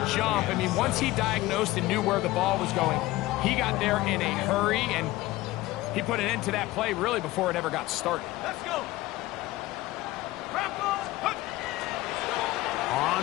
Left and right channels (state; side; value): quieter; right; 17.9 dB